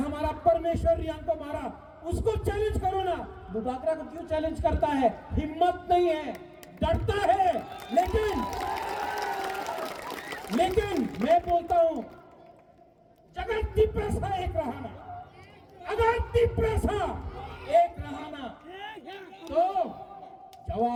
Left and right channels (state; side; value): identical; both; correlation 1.00